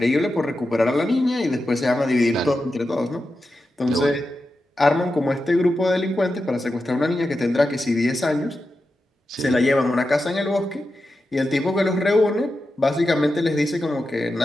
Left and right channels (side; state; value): both; normal; correlation 0.90